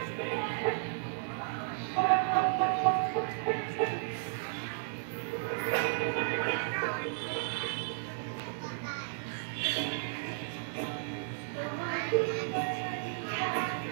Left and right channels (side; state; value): left; silent; 55 dB below the other